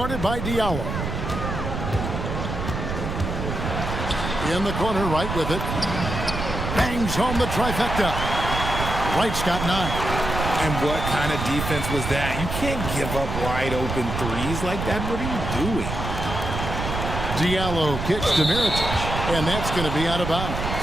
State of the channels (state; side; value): noise; right; rumble, 4 dB below the sound